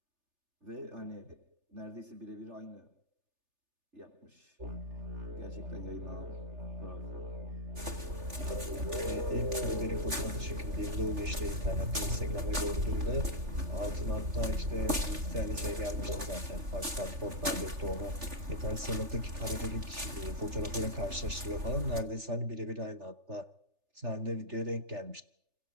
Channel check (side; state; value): left; late; 3.4 ms